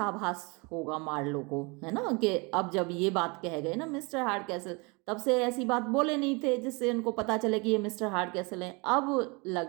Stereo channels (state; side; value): quieter; left; 28.7 dB